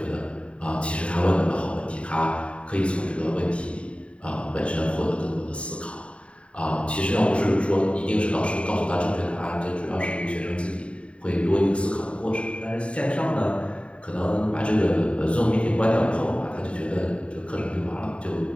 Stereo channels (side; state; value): right; late; 0.060 ms